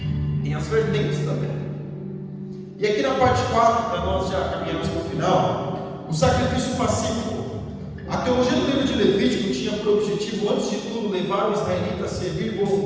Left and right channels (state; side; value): identical; both; correlation 1.00